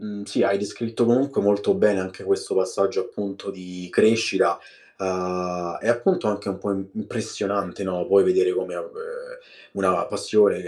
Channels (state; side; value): identical; both; correlation 1.00